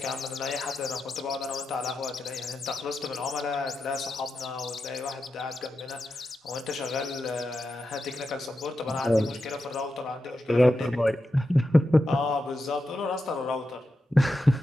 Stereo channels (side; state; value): both; normal; correlation 0.89